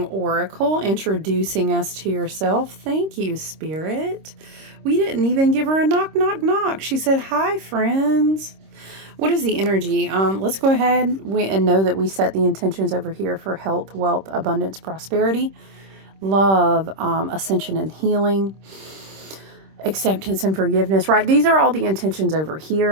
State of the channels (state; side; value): late; left; 26 ms